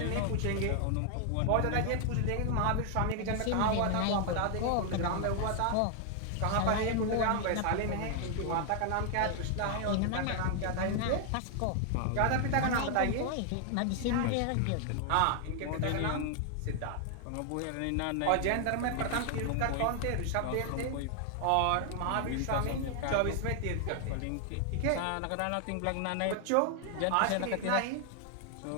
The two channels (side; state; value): both; different; correlation 0.00